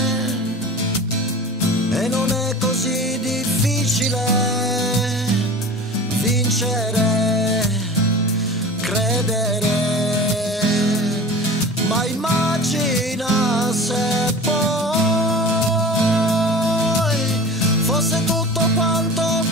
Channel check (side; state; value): both; normal; correlation 0.37